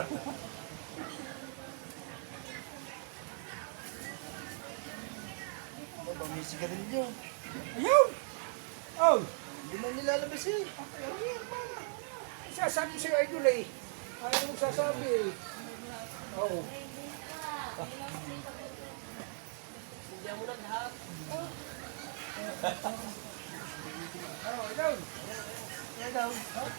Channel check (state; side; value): silent; left; 52 dB below the other